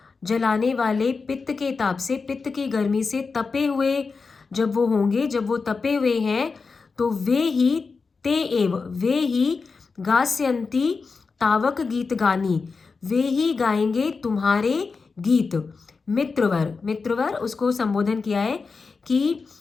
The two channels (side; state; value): right; quieter; 4.6 dB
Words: जलाने वाले पित्त के ताप से, पित्त की गर्मी से तपे हुए जब वो होंगे, जब वो तपे हुए हैं, तो वे ही, ते एव, वे ही, गास्यन्ति तावक गीत गानी, वे ही गाएंगे तुम्हारे गीत। मित्रवर, मित्रवर उसको संबोधन किया है कि